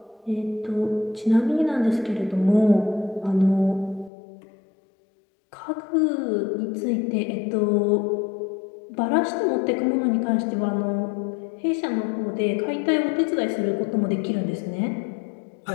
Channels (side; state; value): right; drops out; at 4.1 s